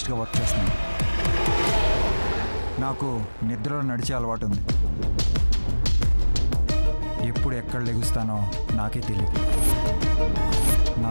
వర్క్ చేస్తున్నాను. నాకు నిద్రలో నడిచే అలవాటు ఉంది. ఎప్పుడు ఎక్కడ లెగుస్తానో నాకే తెలియదు. నా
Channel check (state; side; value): inverted; both; correlation -1.00